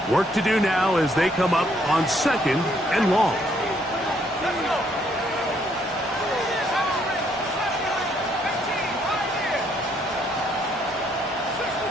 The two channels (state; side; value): normal; both; correlation 0.69